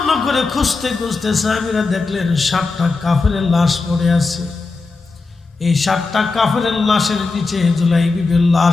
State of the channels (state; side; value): quieter; right; 3.9 dB